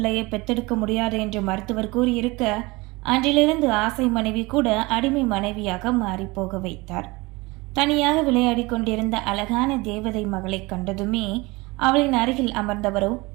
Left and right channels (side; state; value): left; quieter; 23.6 dB